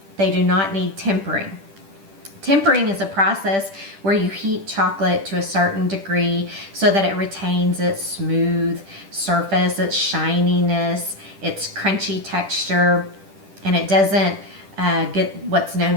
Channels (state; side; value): late; left; 10 ms